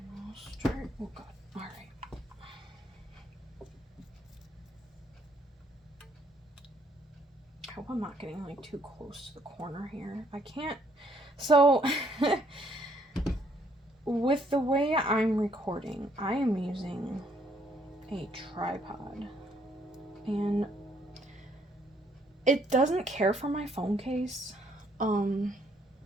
we'll start. Oh god. Alright. I hope I'm not getting like too close to the corner here. I can't. So, with the way I'm recording, I am using a tripod. And it doesn't care for my phone case.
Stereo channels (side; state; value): both; normal; correlation 0.68